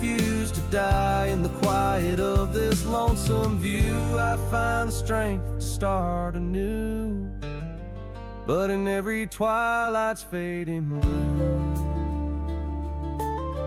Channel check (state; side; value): identical; both; correlation 1.00